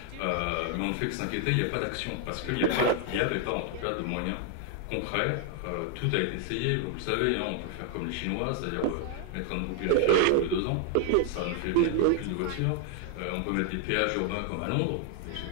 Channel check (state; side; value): different; both; correlation 0.00